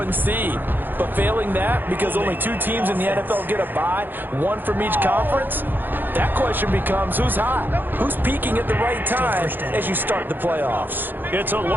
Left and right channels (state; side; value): late; left; 0.092 ms